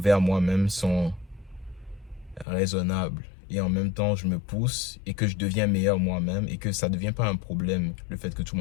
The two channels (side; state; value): right; drops out; at 2.5 s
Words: moi-même sont raisonnables et en même temps je me pousse et que je deviens meilleur moi-même et que ça ne devient pas un problème le fait que tout le